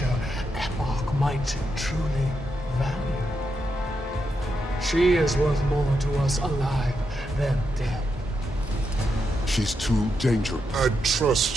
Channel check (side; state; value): both; normal; correlation 0.84